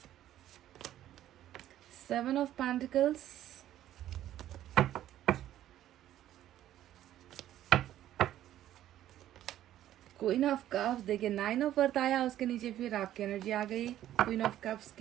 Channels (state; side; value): quieter; left; 12.5 dB